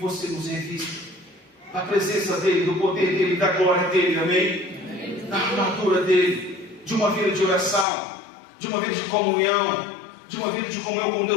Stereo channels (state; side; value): drops out; right; at 7.9 s